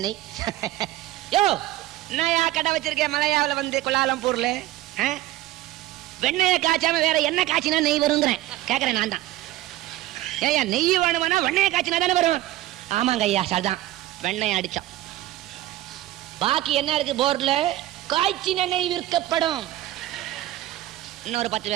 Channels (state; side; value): quieter; left; 15.5 dB